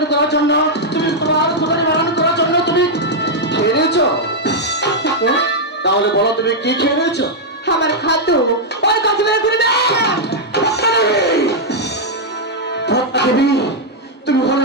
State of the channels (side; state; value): both; normal; correlation -0.04